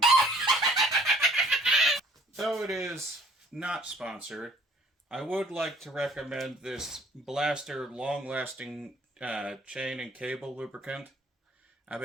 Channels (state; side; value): normal; both; correlation 0.56